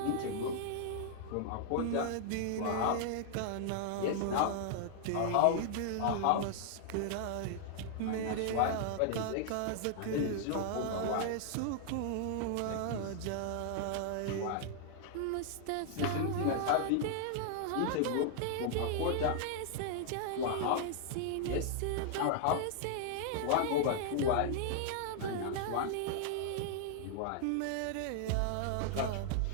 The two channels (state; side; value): different; both; correlation -0.01